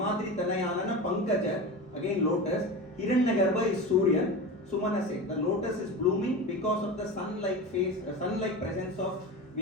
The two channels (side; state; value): both; normal; correlation 0.27